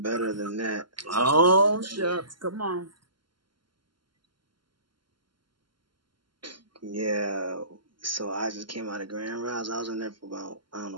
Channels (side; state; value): left; late; 0.72 ms